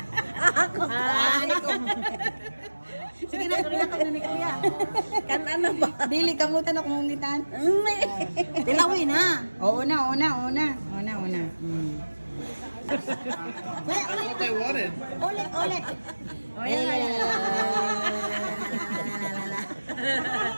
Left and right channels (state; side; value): inverted; both; correlation -1.00